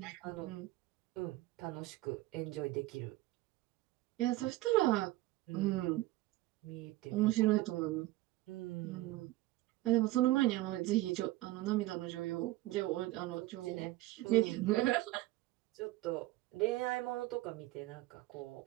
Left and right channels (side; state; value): left; quieter; 17.7 dB